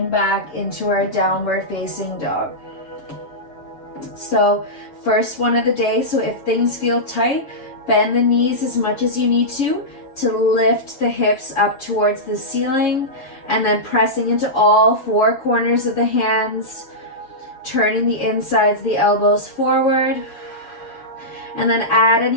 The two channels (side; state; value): right; late; 7.3 ms